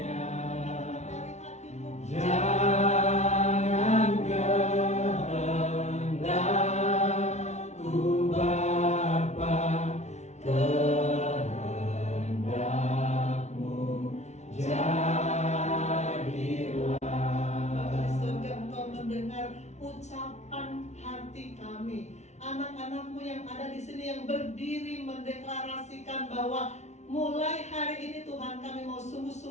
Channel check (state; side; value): late; right; 0.32 ms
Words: Jangan kehendakku Bapa, kehendakmu jadilah. Bapa di surga, Engkau mendengar ucapan hati kami. Anak-anak-Mu yang ada di sini yang berdiri mendeklarasikan bahwa mulai hari ini Tuhan kami mau